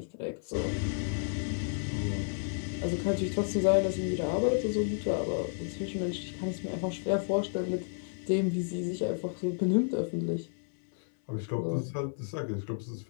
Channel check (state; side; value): silent; right; 57 dB below the other